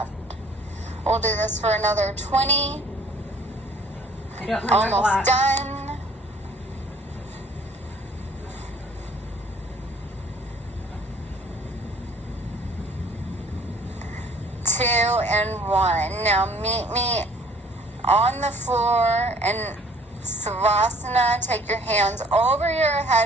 We'll do this for another 20. I don't have Almost done. Two and 1. Now meet me on the floor and Savasana. Take your hands over your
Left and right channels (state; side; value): normal; both; correlation 0.54